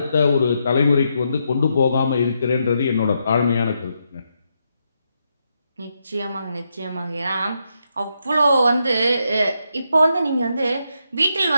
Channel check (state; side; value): inverted; both; correlation -0.81